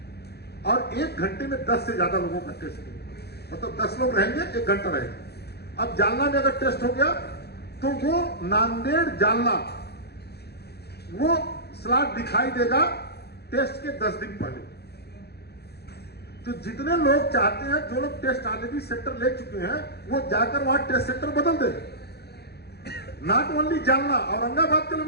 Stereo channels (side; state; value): right; late; 0.48 ms